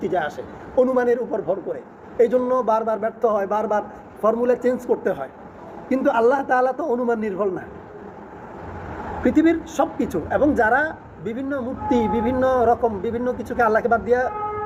আসে অনুমানের উপর ভর করে। এই জন্য বারবার ব্যর্থ হয়, বারবার ফর্মুলা চেঞ্জ করতে হয়। কিন্তু আল্লাহ তাআলা তো অনুমান নির্ভর না, পৃথিবীর সব কিছু। এবং যারা বিভিন্ন মূর্তি, বিভিন্ন রকম বিভিন্ন কিছুকে আল্লাহকে বাদ দিয়ে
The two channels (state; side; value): identical; both; correlation 1.00